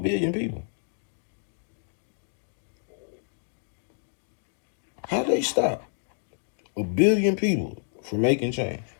people? How they stop a billion people from making change?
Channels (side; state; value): right; silent; digital silence